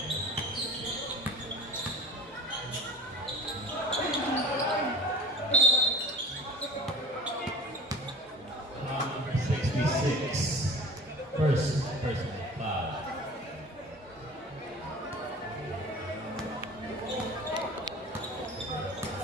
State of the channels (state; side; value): normal; both; correlation 0.44